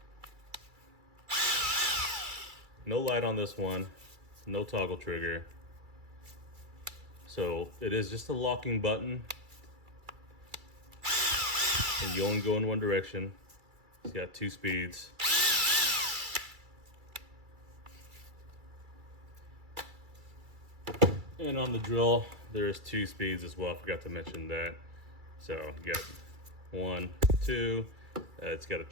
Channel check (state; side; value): late; left; 2.3 ms